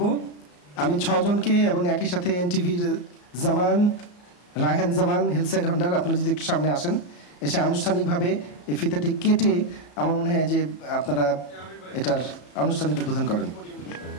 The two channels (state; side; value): late; right; 34 ms